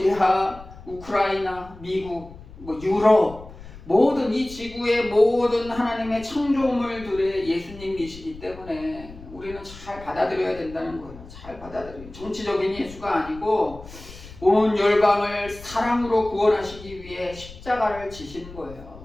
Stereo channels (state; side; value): noise; left; rumble, 17 dB below the sound